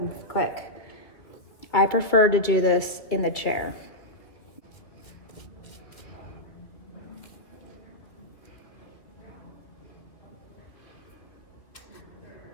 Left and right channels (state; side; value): late; right; 2.4 ms